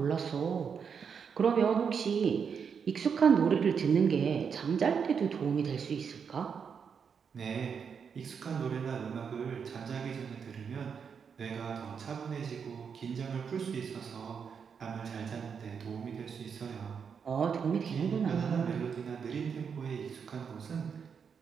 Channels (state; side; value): quieter; left; 6.6 dB